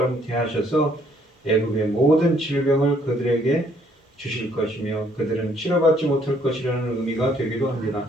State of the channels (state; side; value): normal; both; correlation 0.65